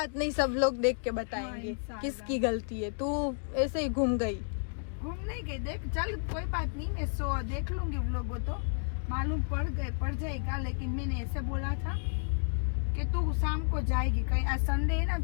नहीं, सब लोग देख के बताएंगे किसकी गलती है। तू ऐसे ही घूम गई। घूमने गई, देख चल कोई बात नहीं, मैं देख लूंगी व्लॉग, वो तो मालूम पड़ जाएगा। लेकिन मैंने ऐसे बोला था कि तू शाम को जाएगी कहीं, आज संडे है ना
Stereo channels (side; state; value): right; silent; digital silence